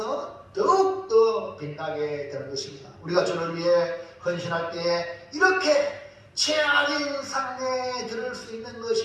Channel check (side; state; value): both; identical; correlation 1.00